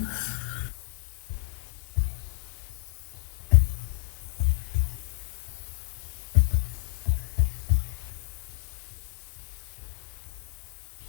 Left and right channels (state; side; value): silent; right; 58 dB below the other